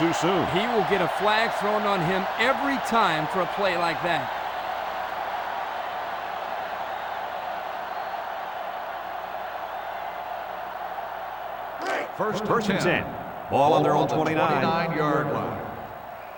soon. He will get a flag thrown on him every time for a play like that. First and 10. Ball on their own 29-yard line.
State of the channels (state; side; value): identical; both; correlation 1.00